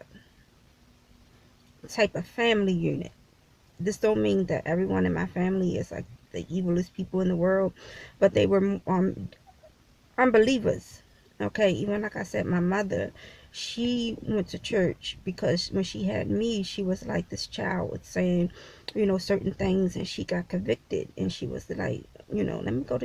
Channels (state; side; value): identical; both; correlation 1.00